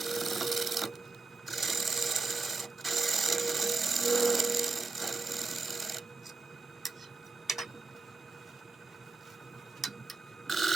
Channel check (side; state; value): left; quieter; 3.9 dB